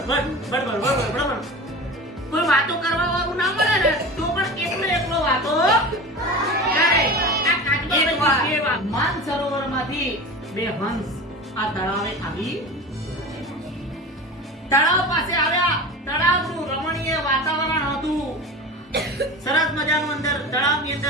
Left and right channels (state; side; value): normal; both; correlation 0.32